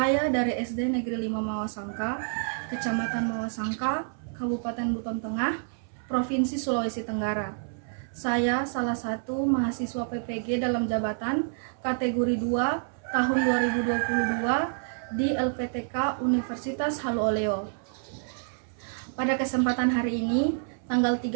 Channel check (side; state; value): left; silent; 59 dB below the other